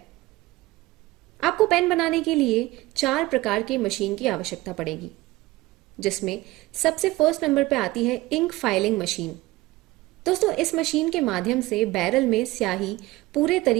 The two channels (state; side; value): quieter; left; 19.2 dB